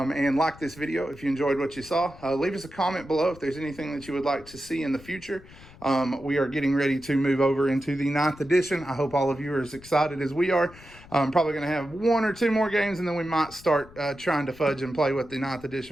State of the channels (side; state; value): left; noise; rumble, 21 dB below the sound